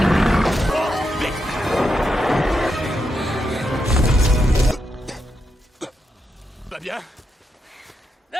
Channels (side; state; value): both; normal; correlation 0.84